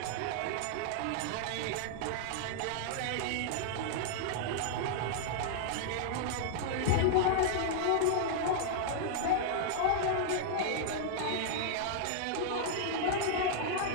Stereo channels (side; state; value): both; different; correlation -0.01